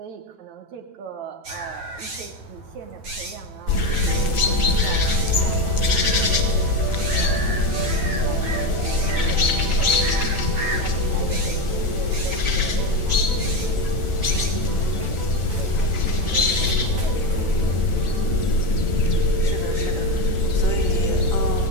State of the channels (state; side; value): late; left; 9.1 ms